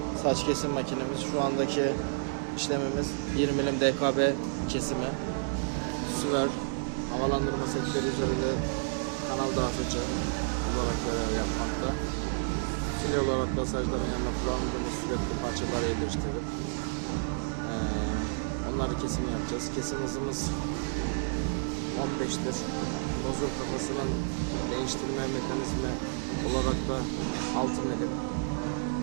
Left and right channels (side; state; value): left; silent; digital silence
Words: saç kesim makinemiz. Şu andaki işlemimiz 1 milim DKB kesimi. Süver havalandırma setleri üzerinde kanal dağıtıcı olarak görev yapmakta. Fil olarak masajların yanına kullandığımız sürekli parçaları yerleştirip onları kesim yapacağız. Kesim hızımız 15'tir. Nozul kafasının değiştirme mekanizmi olarak da 6 milim.